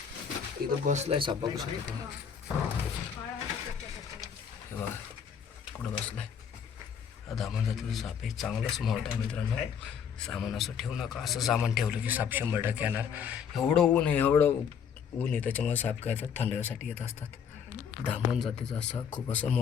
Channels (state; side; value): quieter; right; 7.5 dB